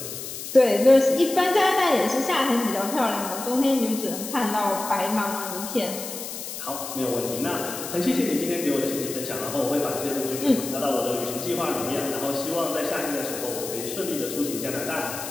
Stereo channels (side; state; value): left; noise; hiss, 8 dB below the sound